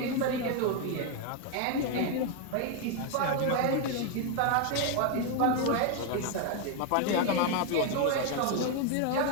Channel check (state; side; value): different; both; correlation 0.01